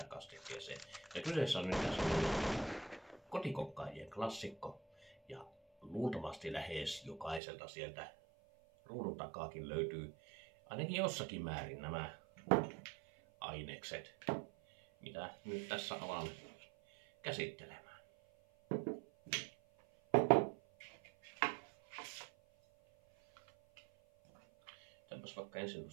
kastikkeeseen. Ja kyseessä on nyt kotikokkaajien klassikko, ja luultavasti lähes jokaiselta sieltä ruudun takaakin löytyy ainakin jossakin määrin nämä ainekset, mitä nyt tässä alan käsittelemään. Tämänpäs vaikka ensin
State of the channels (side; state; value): left; drops out; at 7.4 s